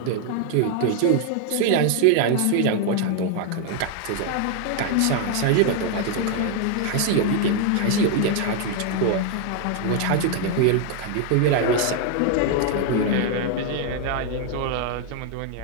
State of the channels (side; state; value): both; different; correlation 0.00